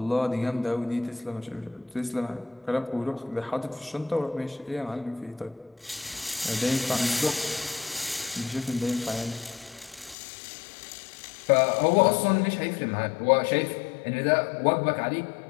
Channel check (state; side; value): drops out; right; at 10.2 s